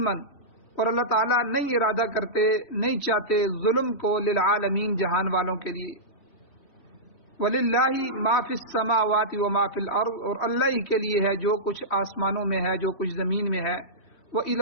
اور اللہ تعالیٰ نہیں ارادہ کرتے نہیں چاہتے ظلم کو، للعالمین جہان والوں کے لیے۔ وَلِلَّهِ مَا فِي السَّمَاوَاتِ وَمَا فِي الْأَرْضِ اور اللہ ہی کے لیے ہے جو کچھ آسمانوں میں ہے جو کچھ زمین میں ہے۔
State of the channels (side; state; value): right; late; 3.2 ms